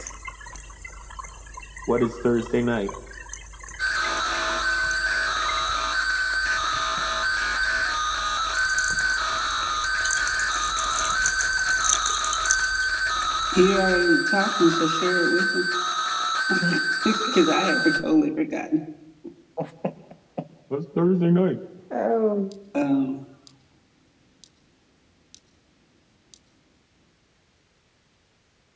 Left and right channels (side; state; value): both; identical; correlation 1.00